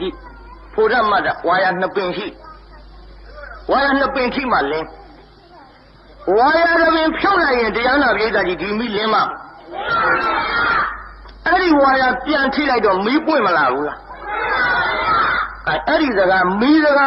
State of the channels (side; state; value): both; identical; correlation 1.00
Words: ြီးဖို့ရမတ်ဝါရနှစ်ပင်ရှိဝါရနှစ်ပင်ထိမှလင်းဝါရတစ်ပင်ဖြုတ်လိုက်ရင်တရားနာပြည်သားကြီးဒီမိလင်းမအဲ့ဒီဝါရပြန်ထိလိုက်တော့မီးပွင့်မလာဘူးလားအဲ့ဒီစကားမီးစကာ